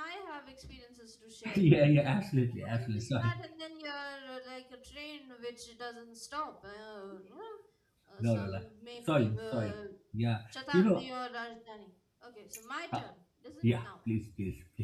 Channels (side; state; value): both; identical; correlation 1.00